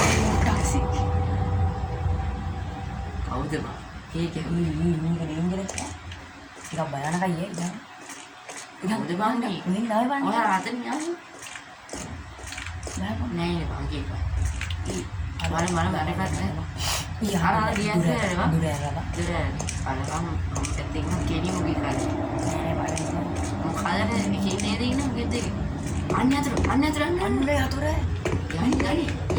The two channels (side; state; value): both; identical; correlation 1.00